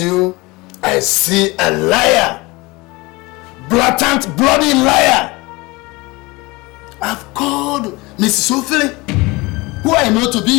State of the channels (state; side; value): quieter; right; 23.6 dB